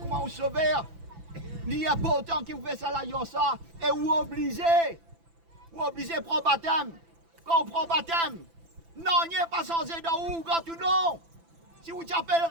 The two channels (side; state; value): left; late; 6.0 ms